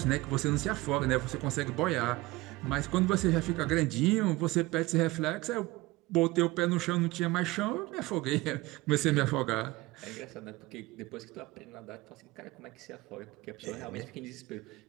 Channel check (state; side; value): quieter; left; 20.5 dB